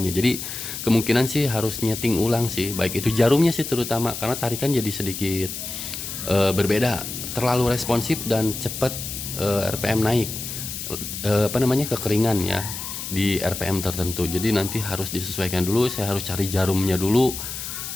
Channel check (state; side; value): noise; left; hiss, 7 dB below the sound